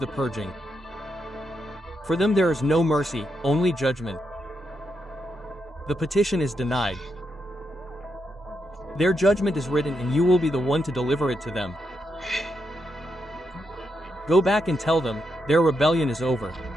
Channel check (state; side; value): normal; both; correlation 0.82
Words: purging. For them there is no mercy, only judgment. The petition is denied. Their judgment is written and you will be the one to deliver it to them. Go back and tell them, their rebellion is over.